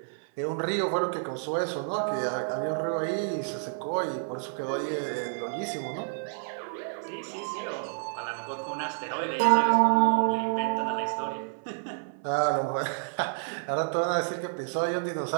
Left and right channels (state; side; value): silent; left; 58 dB below the other